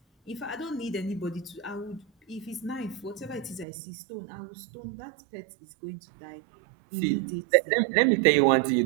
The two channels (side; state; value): left; drops out; at 3.7 s